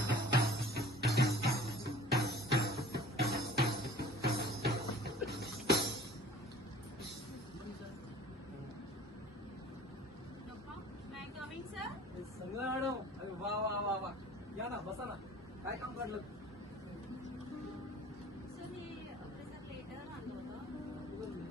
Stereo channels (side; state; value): both; normal; correlation 0.47